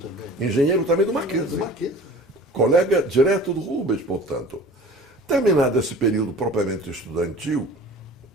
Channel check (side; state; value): both; normal; correlation 0.42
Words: Engenheiro também do Mackenzie. Do Mackenzie. Colega direto do Rubens, portanto. Terminado esse período propriamente estudantil,